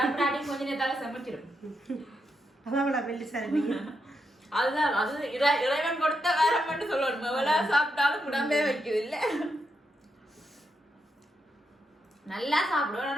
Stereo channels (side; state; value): both; normal; correlation 0.83